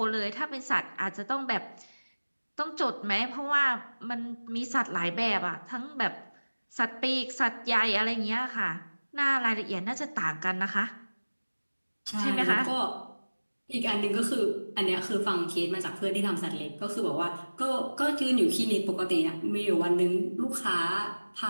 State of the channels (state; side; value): inverted; both; correlation -1.00